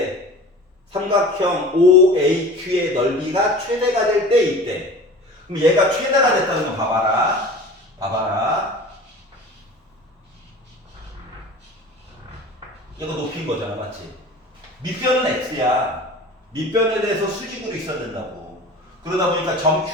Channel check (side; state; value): both; normal; correlation 0.39